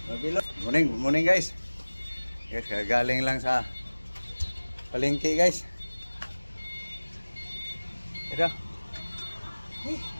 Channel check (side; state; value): both; inverted; correlation -1.00